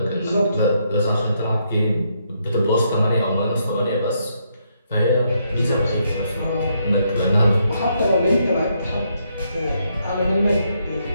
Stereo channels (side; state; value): both; inverted; correlation -0.76